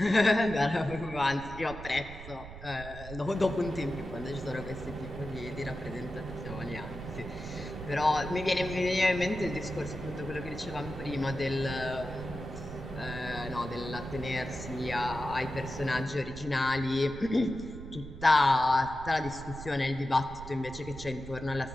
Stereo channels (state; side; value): noise; right; rumble, 13 dB below the sound